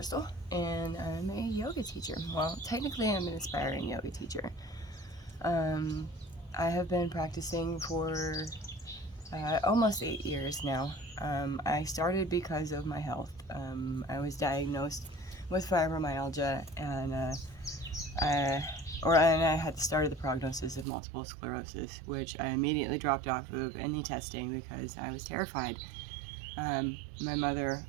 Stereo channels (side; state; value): left; drops out; at 20.9 s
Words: and I'm a yoga teacher. Well, technically I'm an aspiring yoga teacher. I have been practicing for almost 8 years now. I started because of my health. I was diagnosed with fibromyalgia, and I had the start of the prognosis of multiple sclerosis, which I immediately dropped off of any testing because I was terrified. My mother